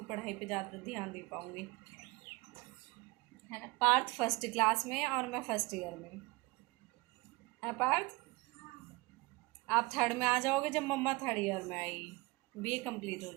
पढ़ाई पे ज़्यादा ध्यान दे पाऊँगी, है ना। पार्थ फर्स्ट क्लास में और मैं फर्स्ट ईयर में, है पार्थ। आप थर्ड में आ जाओगे जब मम्मा थर्ड ईयर में आएगी, बीए कंप्लीट हो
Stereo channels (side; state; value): left; quieter; 24.4 dB